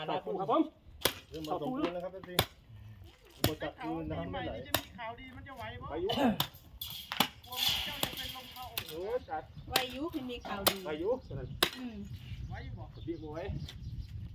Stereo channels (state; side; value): identical; both; correlation 1.00